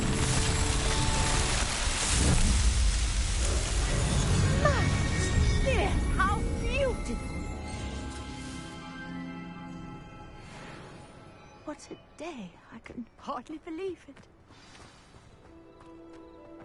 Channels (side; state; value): both; identical; correlation 1.00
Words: How beautiful! What a day. I can hardly believe it.